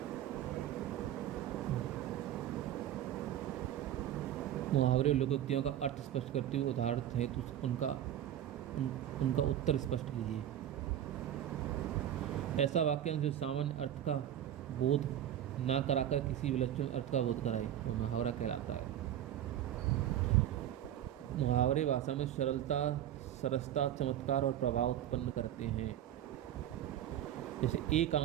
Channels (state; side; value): quieter; left; 11.3 dB